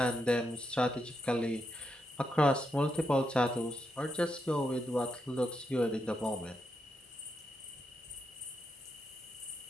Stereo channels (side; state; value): both; normal; correlation 0.83